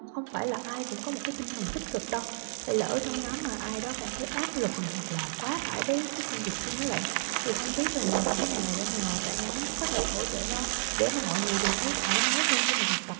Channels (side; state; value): left; silent; digital silence